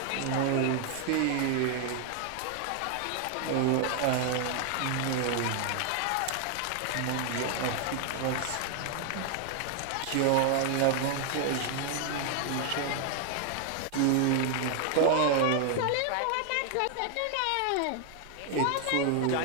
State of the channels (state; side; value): different; both; correlation 0.00